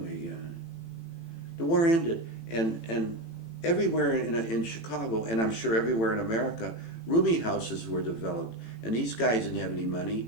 The war ended, and everywhere in Chicago, and I'm sure everywhere in America, rooming houses were developed. And these guys didn't have any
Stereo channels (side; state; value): right; late; 18 ms